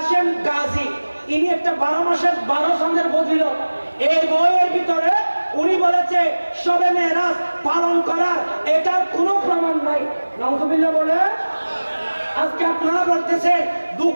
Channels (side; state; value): both; inverted; correlation -1.00